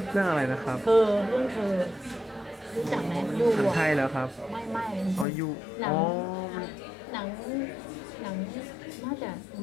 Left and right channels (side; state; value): right; drops out; at 5.2 s